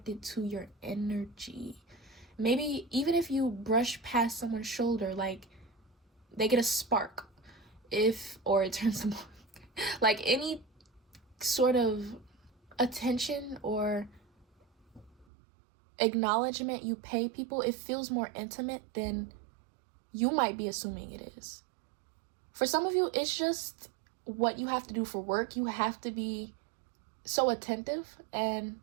to your energy. Maybe even if you brush past someone's shoulder, like, they get a spark, or it turns them on. Like, any sort of attention or acknowledgement you pay people, it feels more intimate than you might be assuming it is. For some of you, it's just what you have to do for work. You have to be so attentive, and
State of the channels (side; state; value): left; drops out; at 15.2 s